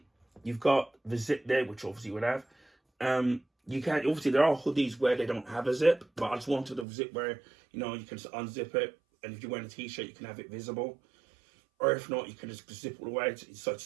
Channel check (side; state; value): left; drops out; at 6.9 s